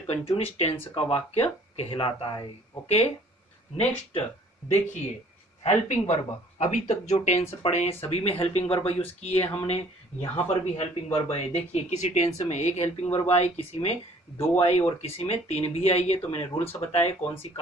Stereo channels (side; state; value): both; normal; correlation 0.55